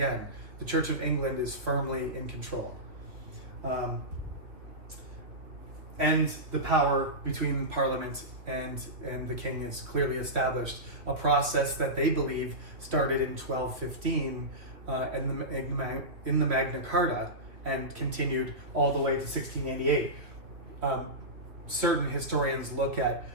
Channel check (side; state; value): left; late; 2.7 ms